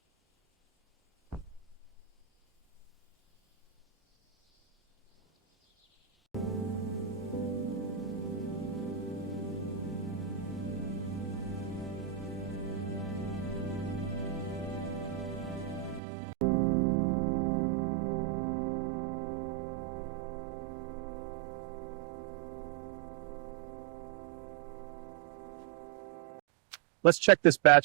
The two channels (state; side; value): drops out; left; at 16.0 s